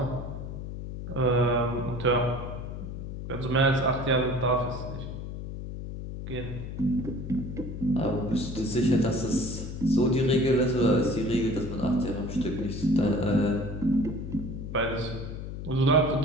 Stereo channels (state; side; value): noise; left; hum, 8 dB below the sound